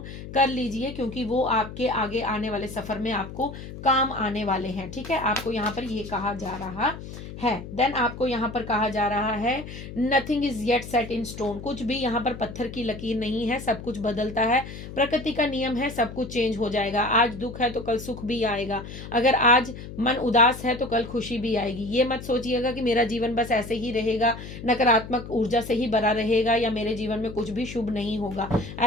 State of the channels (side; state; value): left; noise; hum, 11 dB below the sound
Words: कर लीजिए, क्योंकि वो आपके आगे आने वाले सफर में आपको काम आने वाले हैं। ठीक है, आपको यहाँ पर ये कहा जा रहा है। देन आपको यहाँ पर कहा जा रहा है nothing is yet set in stone. कुछ भी यहाँ पर पत्थर की लकीर नहीं है, सब कुछ बदलता है, प्रकृति का नियम है, सब कुछ चेंज हो जाएगा। आज दुख है तो कल सुख भी आएगा, अगर आज मन उदास है तो कल खुशी भी आएगी। ये मत सोचिएगा कि मेरा जीवन बस ऐसे ही रहेगा, नकारात्मक ऊर्जा से ही भरा रहेगा, या मेरे जीवन में कुछ भी शुभ नहीं होगा,